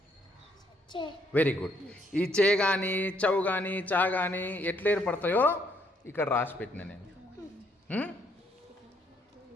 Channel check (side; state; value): both; normal; correlation 0.70